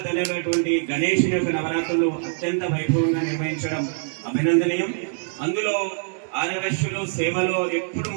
తెలియనటువంటి గణేషుని యొక్క నవరాత్రులు అత్యంత వైభవంగా నిర్వహించడం అభినందనీయం. అందులో ఆర్యవైశ్యులు సేవలో ఎప్పుడు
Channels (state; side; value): silent; left; digital silence